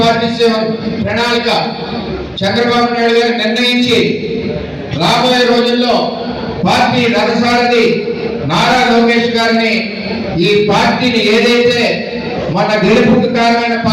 ప్రణాళిక చంద్రబాబు నాయుడు గారు నిర్ణయించి రాబోయే రోజుల్లో పార్టీ రథసారథి నారా లోకేష్ గారిని ఈ పార్టీని ఏదైతే మన గెలుపుకు కారణమైన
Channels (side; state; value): both; identical; correlation 1.00